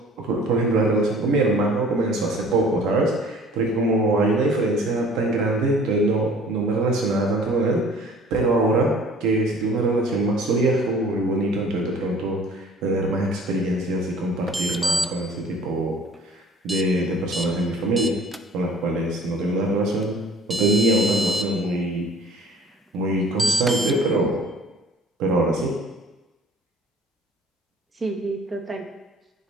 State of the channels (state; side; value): normal; both; correlation 0.50